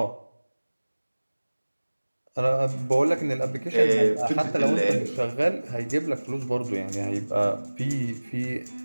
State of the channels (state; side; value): inverted; both; correlation -1.00